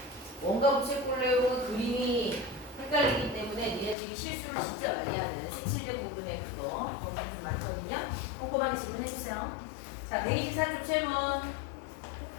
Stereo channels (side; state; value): right; drops out; at 4.0 s